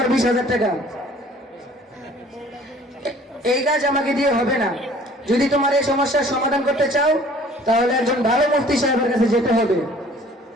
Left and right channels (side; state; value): both; normal; correlation 0.52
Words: 20,000 টাকা। এই কাজ আমাকে দিয়ে হবে না। যদি তোমার এই সমস্যার সমাধান করতে চাও তাহলে একজন ভালো মুফতি সাহেবের কাছে যেতে হবে।